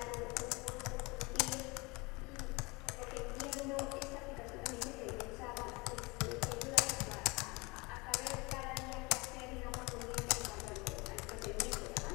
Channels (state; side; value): quieter; right; 26.0 dB